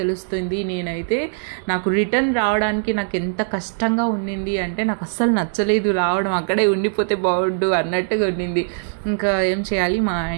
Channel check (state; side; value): silent; left; digital silence